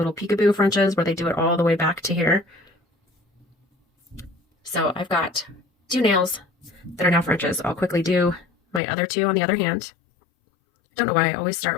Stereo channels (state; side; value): drops out; right; at 8.8 s